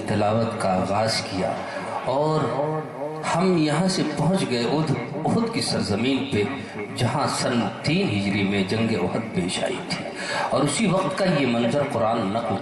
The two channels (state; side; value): identical; both; correlation 1.00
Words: تلاوت کا آغاز کیا، اور ہم یہاں سے پہنچ گئے احد کی سرزمین پہ، جہاں سن 3 ہجری میں جنگ احد پیش آئی تھی، اور اسی وقت کا یہ منظر قرآن نقل